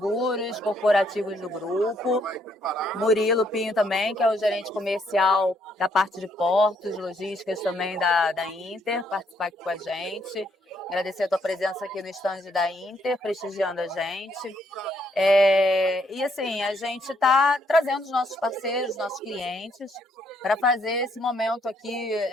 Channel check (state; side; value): normal; both; correlation 0.71